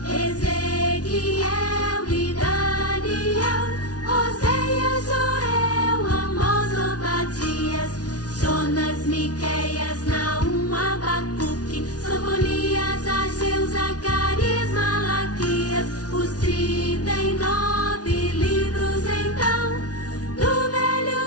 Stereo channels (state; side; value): late; right; 0.68 ms